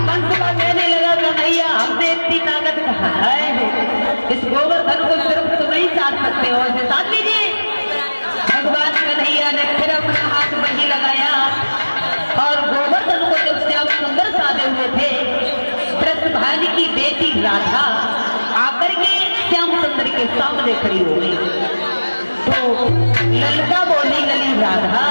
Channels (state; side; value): inverted; both; correlation -1.00